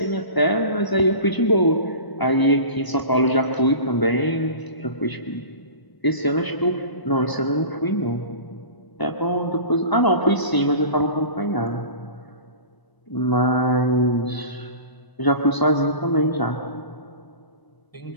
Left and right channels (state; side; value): late; right; 1.0 ms